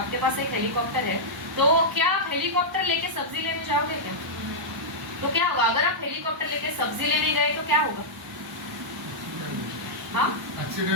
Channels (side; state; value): both; normal; correlation -0.09